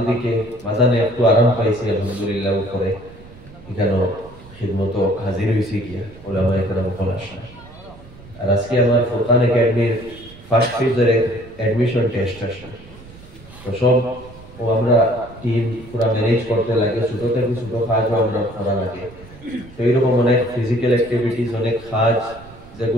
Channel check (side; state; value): right; noise; rumble, 20 dB below the sound